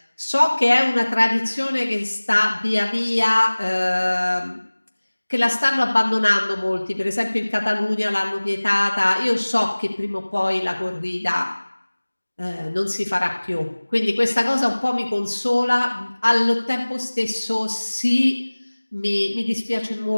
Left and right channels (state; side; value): inverted; both; correlation -1.00